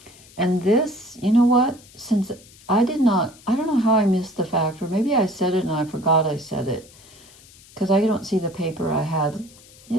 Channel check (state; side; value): noise; left; hiss, 24 dB below the sound